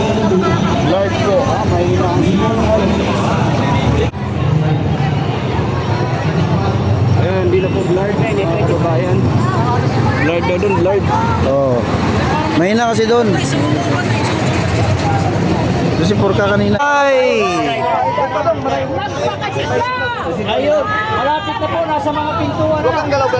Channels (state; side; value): identical; both; correlation 1.00